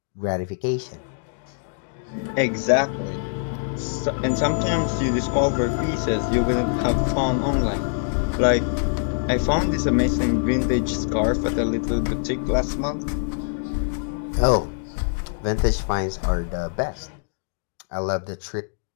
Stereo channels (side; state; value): right; silent; digital silence